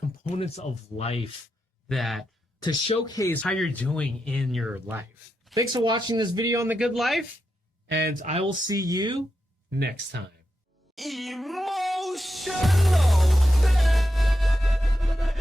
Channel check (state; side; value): normal; both; correlation 0.87